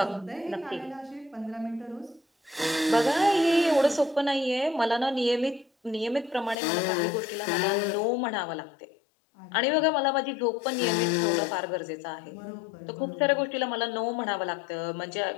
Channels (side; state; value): right; drops out; at 6.6 s